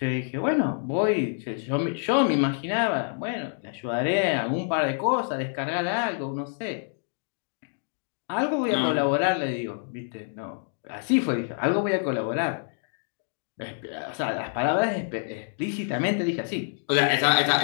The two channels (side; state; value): right; silent; digital silence